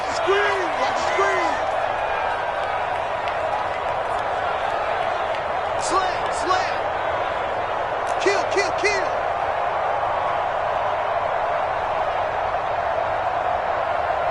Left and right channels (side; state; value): both; identical; correlation 1.00